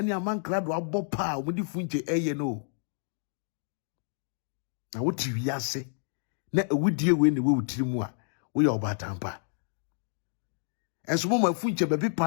amankrado abọ pa omudi funche eye no. Na woti wiase na ewudie we ne we wutiri mu a wo ye obatampa. Enso mo mafunche bebi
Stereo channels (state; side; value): silent; right; digital silence